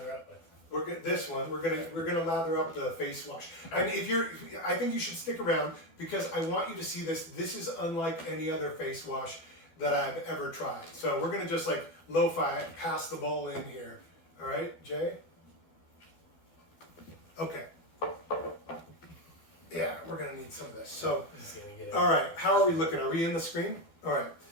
up with? This one. We're gonna lather up the face wash. And I think you should stick around because I want you to see this. This is unlike any other face wash that I've ever tried. So we're gonna just like lo-fi it and pass the bowl in here. All right, Jay. Okay. Yeah, we're gonna need some of this. So, all right, how are we looking? Are we in the screen? All right,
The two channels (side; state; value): right; late; 12 ms